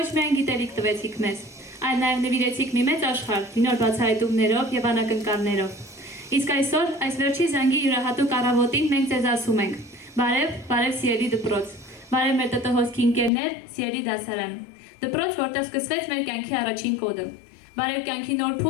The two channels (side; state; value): right; drops out; at 13.3 s